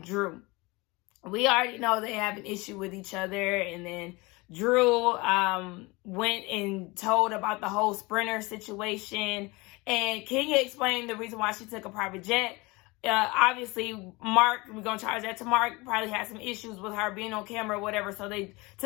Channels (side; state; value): right; quieter; 24.3 dB